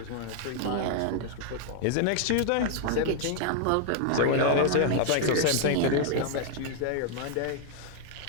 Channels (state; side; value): different; both; correlation 0.00